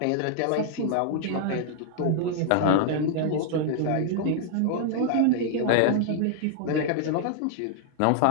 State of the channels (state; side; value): different; both; correlation -0.01